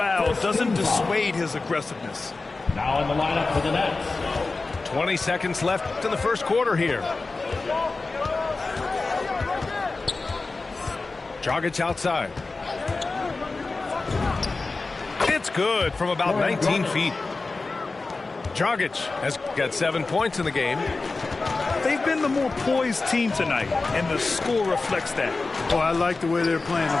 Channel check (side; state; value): right; quieter; 3.7 dB